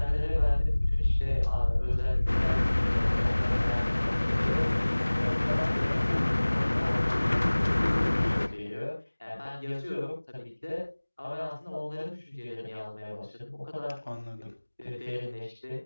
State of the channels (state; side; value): inverted; both; correlation -1.00